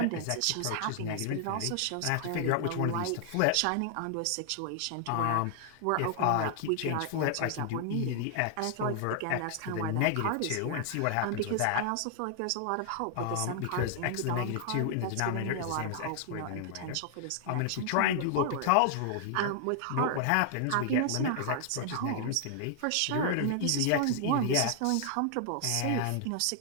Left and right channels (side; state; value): both; different; correlation 0.00